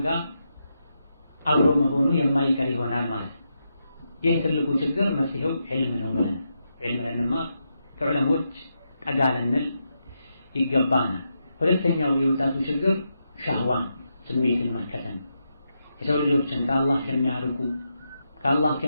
ጋር አብሮ መሆኑ የማይቀር ይሆናል ማለት ነው። ይህ ትልቁ ችግር መፍትሄው ዒልም ነው ብለን ዒልም ለንማር ከዑለሞች ጠጋ ልንል ይገባናል። ሁለተኛው የወጣቱ ችግር ሻህዋን ስሜትን መከተል። የሰው ልጆችን ከአላህ ከሚያርቁ ከአላህ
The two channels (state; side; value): inverted; both; correlation -0.84